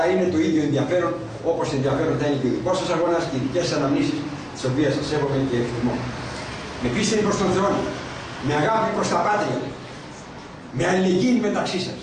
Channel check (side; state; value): both; identical; correlation 1.00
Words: είναι το ίδιο ενδιαφέρον, όπως ενδιαφέρον θα είναι και ο δικός σας αγώνας και οι δικές σας αναμνήσεις, τις οποίες σας σέβομαι και εκτιμώ. Με πίστη προς τον Θεό, με αγάπη προς τα πάτρια, με αλληλεγγύη μεταξύ σας,